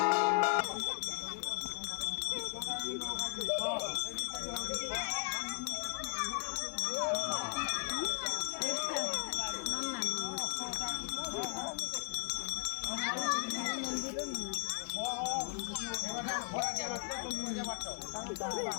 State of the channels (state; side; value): silent; right; 53 dB below the other